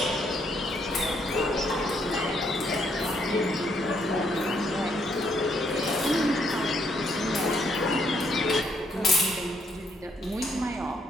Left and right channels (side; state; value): both; normal; correlation 0.72